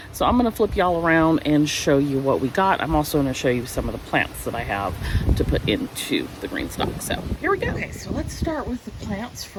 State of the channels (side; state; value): both; identical; correlation 1.00